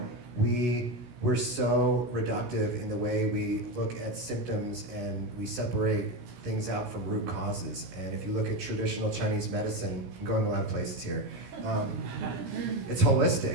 we're so reductive in the way we look at symptoms and we separate things out from root causes. And if you look at traditional Chinese medicine, I'm going a lot of places here, it's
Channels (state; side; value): late; left; 16 ms